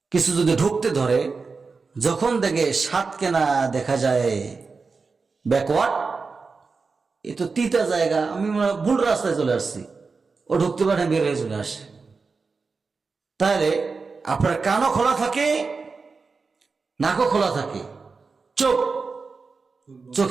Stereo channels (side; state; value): left; quieter; 4.5 dB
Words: কিছু যদি ঢুকতে ধরে, যখন দেখে সাত কেনা দেখা যায় ব্যাকওয়ার্ড, এ তো তিতা জায়গা, আমি ভুল রাস্তায় চলে আসছি, ও ঢুকতে পারে, বের হয়ে চলে আসে। তাহলে আপনার কানও খোলা থাকে, নাকও খোলা থাকে,